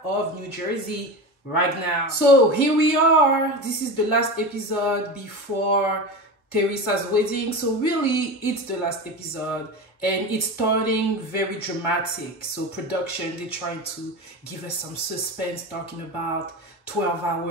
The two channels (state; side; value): normal; both; correlation 0.25